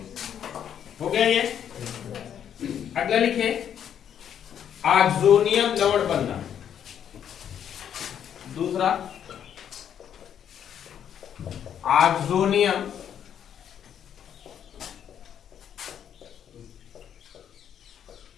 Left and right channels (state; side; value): quieter; right; 9.1 dB